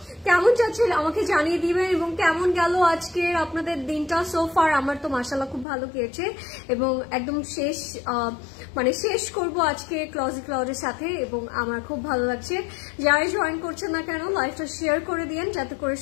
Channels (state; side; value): drops out; right; at 5.7 s